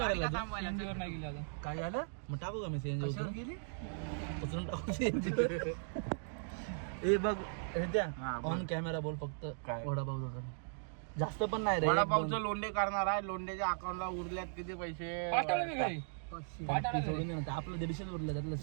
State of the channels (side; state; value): left; silent; digital silence